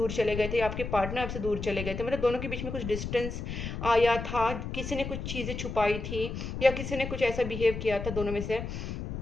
चले गए थे, आपके पार्टनर आपसे दूर चले गए थे। मतलब दोनों के बीच में कुछ डिस्टेंस आया था, किसी ने कुछ चीज़ें छुपाई थी या किसी ने कुछ ऐसा बिहेव किया था दोनों में से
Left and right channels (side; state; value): left; noise; rumble, 6 dB below the sound